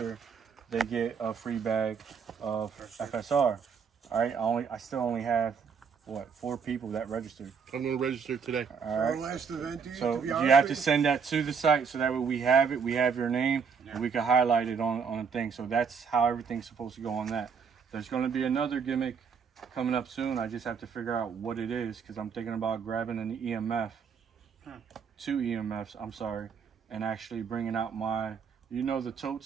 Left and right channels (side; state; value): left; quieter; 6.2 dB